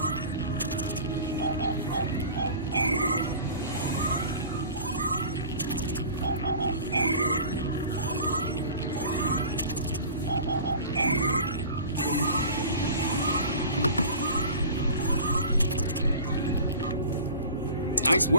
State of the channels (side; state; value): both; inverted; correlation -0.40